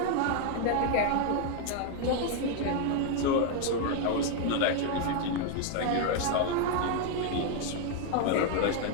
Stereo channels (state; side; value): different; both; correlation 0.00